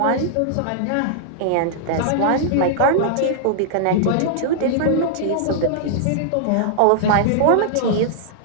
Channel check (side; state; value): both; different; correlation -0.01